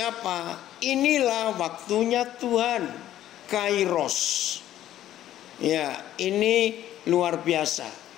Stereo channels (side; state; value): right; quieter; 12.6 dB